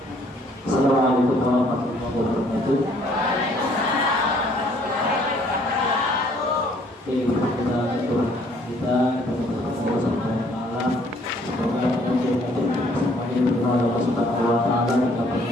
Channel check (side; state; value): both; normal; correlation 0.62